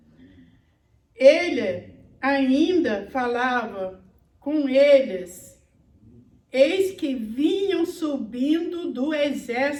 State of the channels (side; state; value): both; identical; correlation 1.00